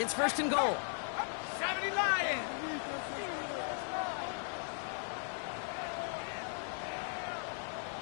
1st and goal. 70 Lions!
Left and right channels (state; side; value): silent; right; 53 dB below the other